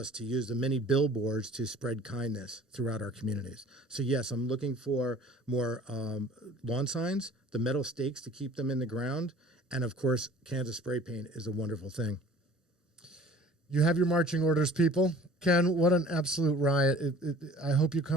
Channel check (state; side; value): normal; both; correlation 0.48